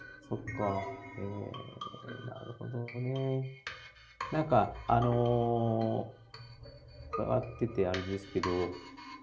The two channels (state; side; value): identical; both; correlation 1.00